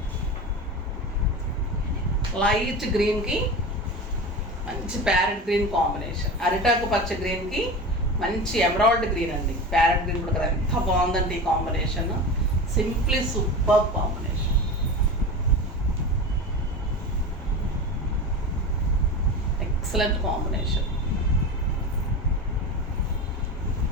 లైట్ గ్రీన్కి మంచి ప్యారెట్ గ్రీన్ కాంబినేషన్, అరిటాకు పచ్చ గ్రీన్కి మంచి ఎమరాల్డ్ గ్రీన్ అండి. ప్యారెట్ గ్రీన్ కూడా కదా, ఎంత బాగుందండి ఈ combination, simply super combination. Excellent combination,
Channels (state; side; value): normal; both; correlation 0.28